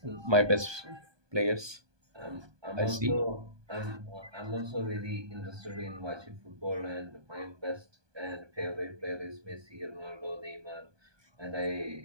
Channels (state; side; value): late; left; 1.2 ms